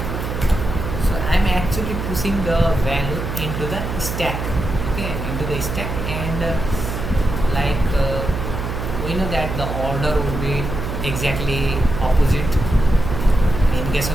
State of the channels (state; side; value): noise; right; hum, 4 dB below the sound